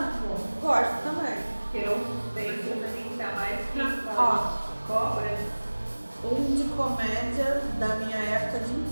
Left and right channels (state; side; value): inverted; both; correlation -1.00